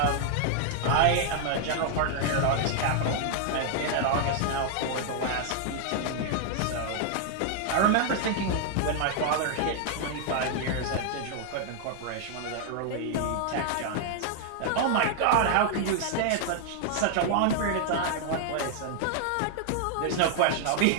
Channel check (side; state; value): both; different; correlation 0.00